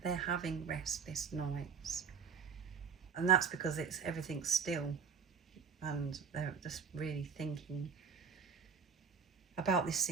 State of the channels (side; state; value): left; quieter; 6.3 dB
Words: they're having restless nights. And that's because everything's still, and they're just really thinking about this